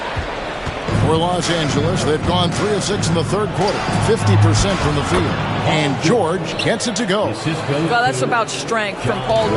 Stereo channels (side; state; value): both; identical; correlation 1.00